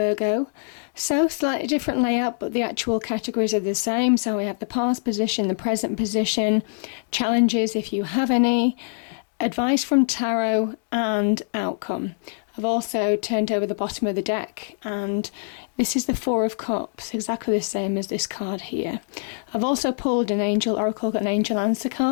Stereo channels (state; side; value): silent; right; digital silence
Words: So slightly different layout, but the actual categories are the same. So we have the past position, the present position, challenges if you have any, advice from tarot and outcome. I've also turned over the bottom of the deck and this is the Four of Cups, exactly the same as this card here. I've also pulled an angel oracle, got an angel answer